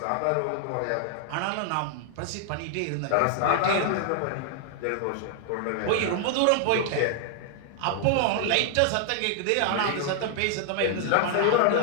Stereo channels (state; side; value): different; both; correlation 0.00